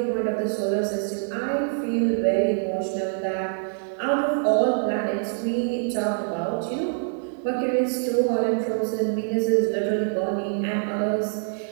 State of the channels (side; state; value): left; silent; digital silence